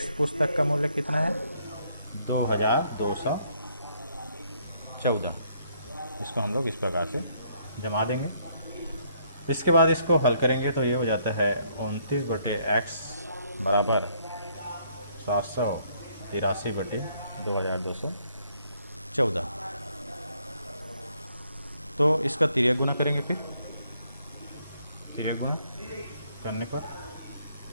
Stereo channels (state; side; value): inverted; both; correlation -0.69